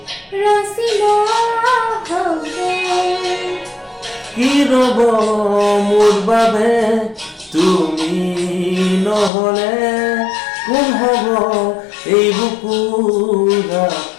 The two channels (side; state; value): right; drops out; at 9.3 s